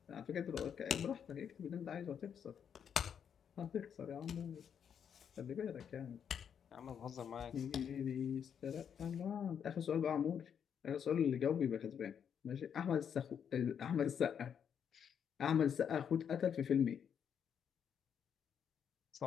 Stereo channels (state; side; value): quieter; right; 7.9 dB